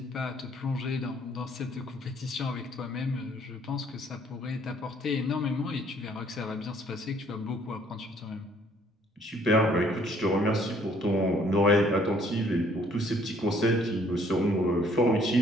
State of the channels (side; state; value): both; normal; correlation 0.62